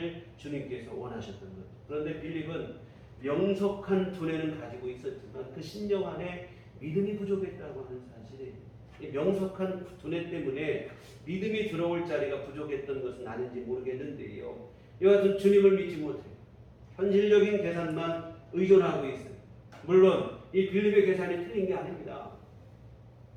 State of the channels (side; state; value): both; identical; correlation 1.00